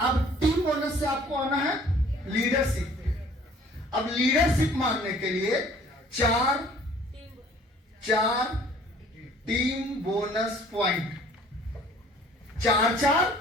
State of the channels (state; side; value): normal; both; correlation 0.54